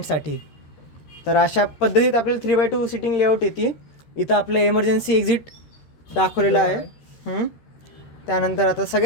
तर अशा पद्धतीत आपल्याला 3x2 सिटिंग लेआउट येते. इथं आपलं एमर्जन्सी एक्झिट दाखवलेलं आहे. त्यानंतर आता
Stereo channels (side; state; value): right; late; 13 ms